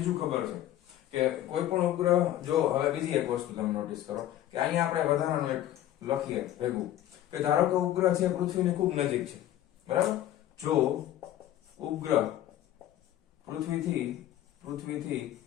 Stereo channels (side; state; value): right; quieter; 12.8 dB